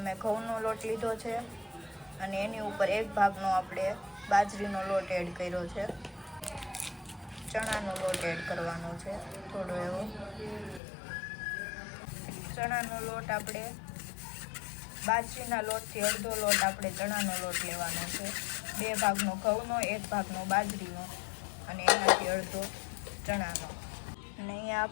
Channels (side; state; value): right; drops out; at 10.8 s